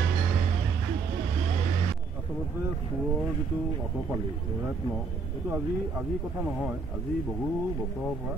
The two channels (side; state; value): left; quieter; 4.7 dB